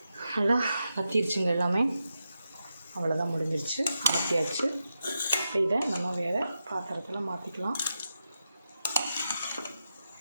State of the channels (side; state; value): both; inverted; correlation -0.87